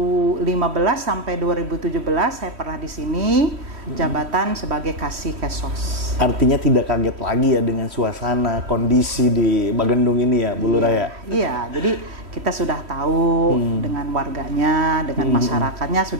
sampai 2017 saya pernah di sini jabatan sebagai Kasih Kesos. Artinya tidak kaget lagi ya dengan suasana kondisi di Bagendung ini ya Bu Lurah ya? Iya, jadi kita sudah tahu dengan warganya, dengan masyarakatnya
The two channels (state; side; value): late; left; 3.1 ms